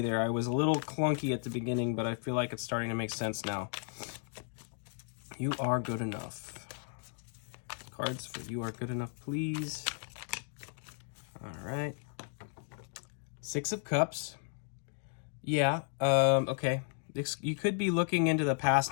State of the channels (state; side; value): silent; right; digital silence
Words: there. I was a little clunky at the beginning, but I feel like it's starting to make sense now. You are good enough. Cards for You Are Good Enough, please. All right. 6 of Cups. Yeah, okay. You could be looking into the